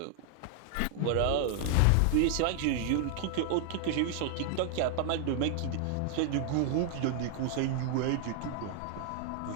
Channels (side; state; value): both; different; correlation 0.00